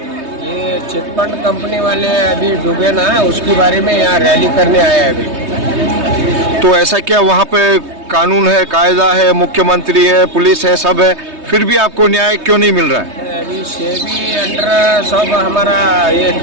ये चिटफंड कंपनी वाले अभी डूबे ना, उसके बारे में यहाँ रैली करने आए हैं अभी। तो ऐसा क्या वहाँ पे कानून है, कायदा है, मुख्यमंत्री है, पुलिस है, सब है, फिर भी आपको न्याय क्यों नहीं मिल रहा है? अभी सेबी अंडर सब हमारा ये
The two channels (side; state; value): left; late; 3.2 ms